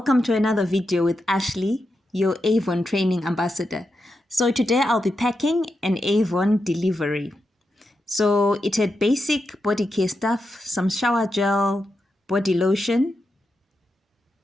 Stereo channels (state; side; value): normal; both; correlation 0.87